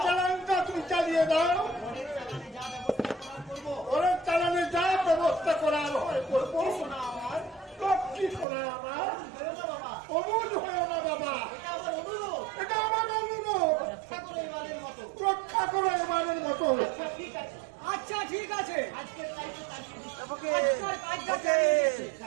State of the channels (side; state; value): left; drops out; at 8.5 s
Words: রক্ষা করো এবারের মতো। আচ্ছা ঠিক আছে।